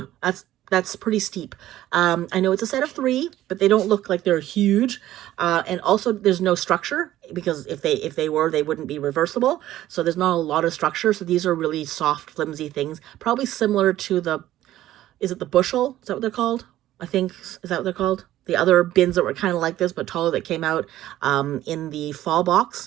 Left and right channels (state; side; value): quieter; left; 13.9 dB